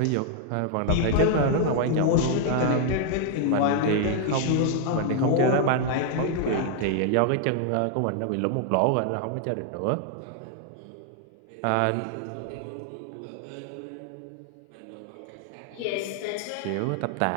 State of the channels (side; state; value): both; different; correlation 0.00